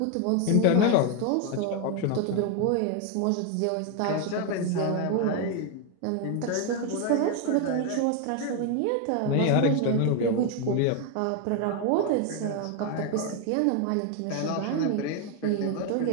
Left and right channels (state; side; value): different; both; correlation 0.01